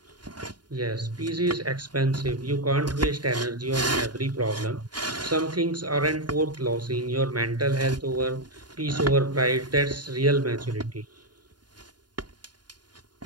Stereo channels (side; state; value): left; late; 0.70 ms